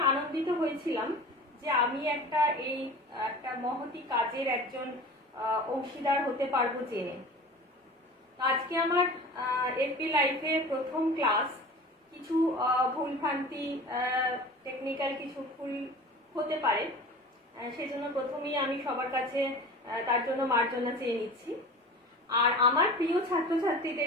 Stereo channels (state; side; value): normal; both; correlation 0.37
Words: আনন্দিত হয়েছিলাম যে আমি একটা মহতি কাজের একজন অংশীদার হতে পারবো জেনে। আজকে আমার এপি লাইভে প্রথম ক্লাস। কিছু ভুলভ্রান্তি, টেকনিক্যাল কিছু ভুল হতে পারে, সেজন্য প্রথমেই আমি সবার কাছে তার জন্য মার্জনা চেয়ে নিচ্ছি। আর আমার প্রিয়